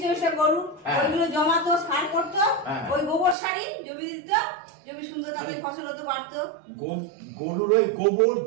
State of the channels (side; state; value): left; drops out; at 3.4 s